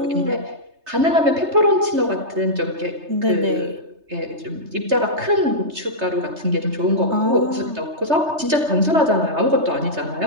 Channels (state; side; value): late; left; 3.3 ms